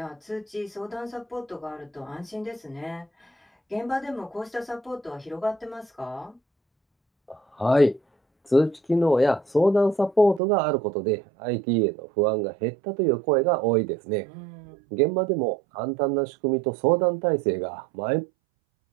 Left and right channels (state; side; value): drops out; left; at 10.4 s